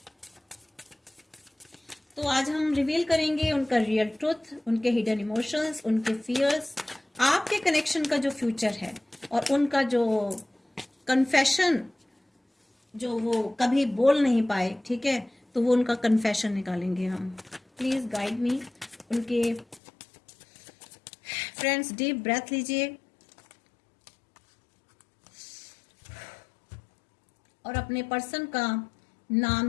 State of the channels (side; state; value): right; drops out; at 19.8 s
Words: तो आज हम रिवील करेंगे उनका रियल ट्रुथ, उनके हिडन इमोशंस, उनके फियर्स, आपके कनेक्शन का जो फ्यूचर है, और उनका जो कन्फेशन जो वो कभी बोल नहीं पाए, ठीक है, तो वो उनका कन्फेशन निकालेंगे हम। प्लीज गाइड मी। उनके फ्रेंड्स डीप ब्रेथ लीजिए और अपने पर्सन का